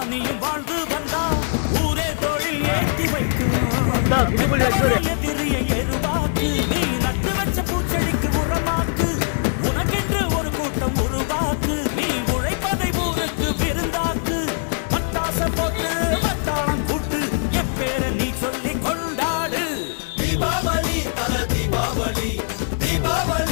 நீயும் வாழ்ந்து வந்தா ஊரே தோளில் ஏற்றி வைக்கும். எதிரிய எருவாக்கு நீ நட்டு வச்ச பூச்செடிக்கு உரமாக்கு. உனக்கென்று ஒரு கூட்டம் உருவாக்கு. நீ உழைப்பதை ஊருக்கு விருந்தாக்கு. பட்டாச போட்டு வட்டாளம் கூட்டு என் பேரை நீ சொல்லி கொண்டாடு. தீபாவளி தல தீபாவளி,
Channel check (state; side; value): silent; right; digital silence